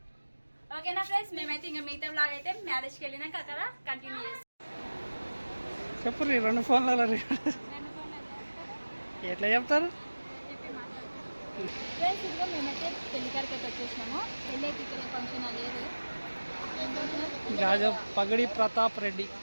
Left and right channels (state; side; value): inverted; both; correlation -1.00